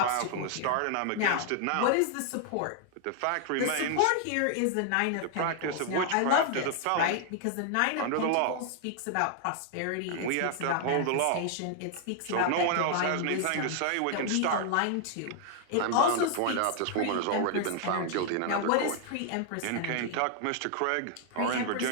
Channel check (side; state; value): both; different; correlation 0.00